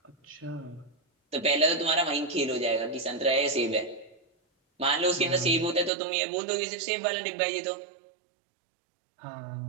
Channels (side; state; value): left; drops out; at 5.9 s